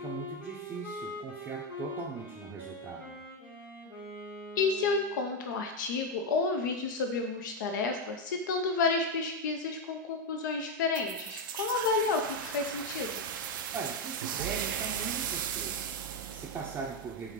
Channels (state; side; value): normal; both; correlation 0.06